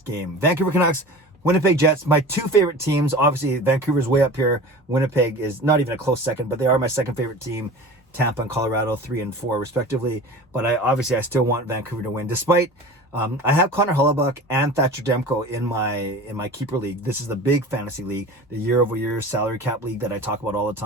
game. Vancouver Canucks, Winnipeg Jets, my two favorite teams. Obviously, Vancouver's way up here. Winnipeg is not even a close second, but they are my second favorite team. Tampa and Colorado, 3 and 4 respectively. But I still want Vancouver to win, despite I have Connor Hellebuyck and Thatcher Demko in my keeper league. This is the big fantasy league, the year-over-year salary cap league that I talk about all the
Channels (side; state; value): both; normal; correlation 0.36